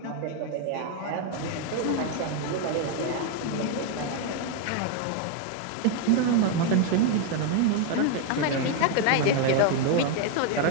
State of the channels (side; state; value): both; different; correlation 0.01